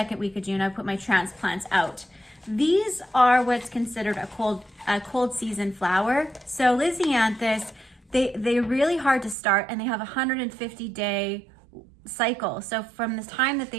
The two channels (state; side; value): drops out; left; at 9.3 s